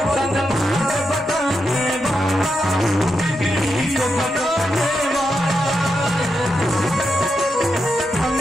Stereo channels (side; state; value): both; normal; correlation 0.85